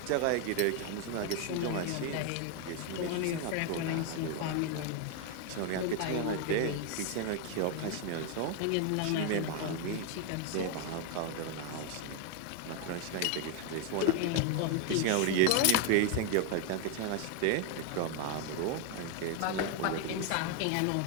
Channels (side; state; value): both; different; correlation 0.01